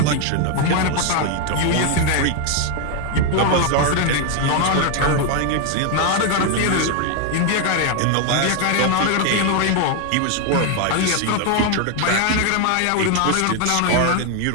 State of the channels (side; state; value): both; different; correlation 0.01